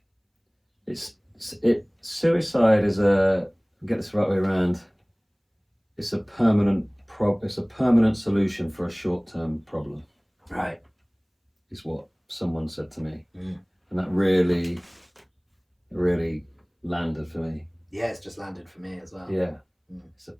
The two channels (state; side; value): identical; both; correlation 1.00